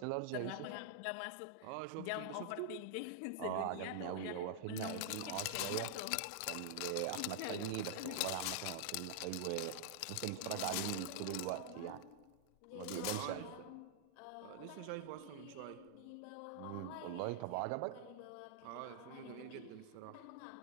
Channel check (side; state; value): both; different; correlation -0.01